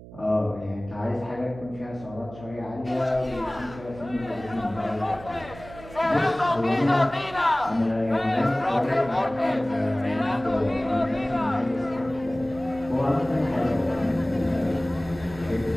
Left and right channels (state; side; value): noise; right; hum, 17 dB below the sound